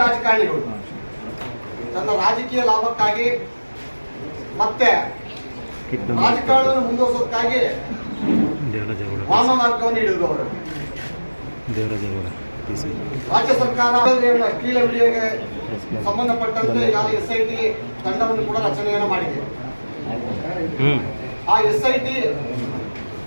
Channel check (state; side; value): inverted; both; correlation -1.00